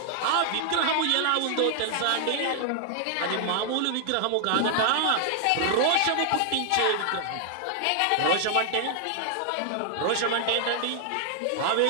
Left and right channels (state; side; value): different; both; correlation 0.00